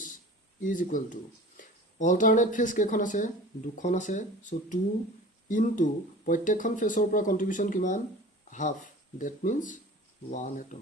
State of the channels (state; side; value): normal; both; correlation 0.40